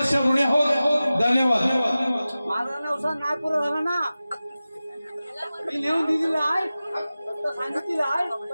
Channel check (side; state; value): both; inverted; correlation -0.96